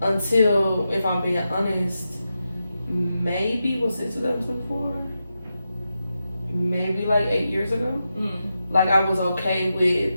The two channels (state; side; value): inverted; both; correlation -0.89